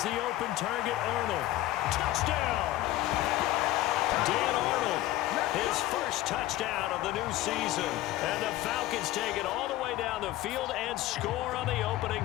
the open target, Arnold. Touchdown! Dan Arnold, his first touchdown of the new season. And the Falcons take it all the way down the field and score on the opening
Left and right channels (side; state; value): right; quieter; 15.6 dB